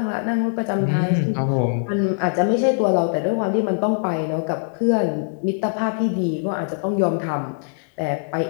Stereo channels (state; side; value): silent; right; digital silence